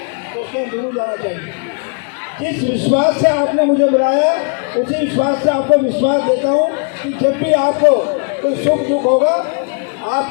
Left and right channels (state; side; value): quieter; right; 37.6 dB